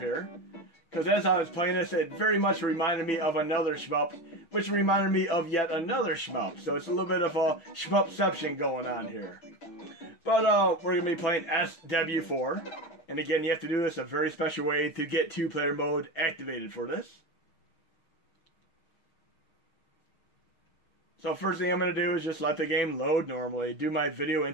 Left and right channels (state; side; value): late; right; 6.0 ms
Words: Because as I was playing this, it very much reminded me of another shmup, which reminded me of yet another shmup. So it's a little bit of a shmupception going on here. But we're going to be playing SW4. And again, you have to do this a very special way to get two-player mode activated for this. So first thing I'm going to do is just let the game load normally. Do my video